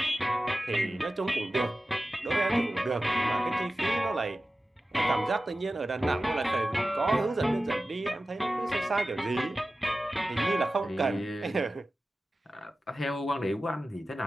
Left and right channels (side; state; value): both; normal; correlation 0.95